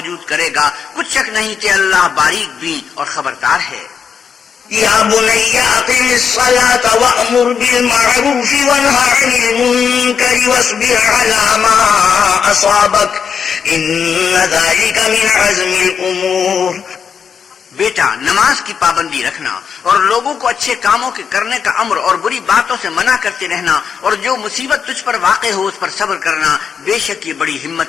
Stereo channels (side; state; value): right; quieter; 6.8 dB